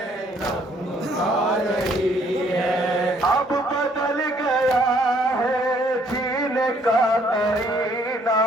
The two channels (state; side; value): normal; both; correlation 0.64